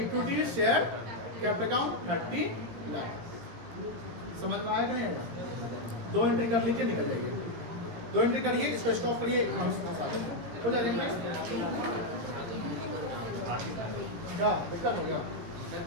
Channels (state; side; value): late; left; 18 ms